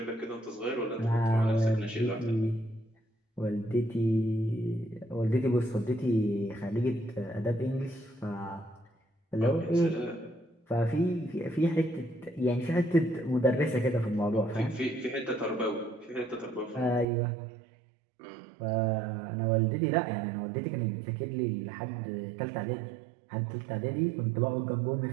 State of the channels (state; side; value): drops out; left; at 17.1 s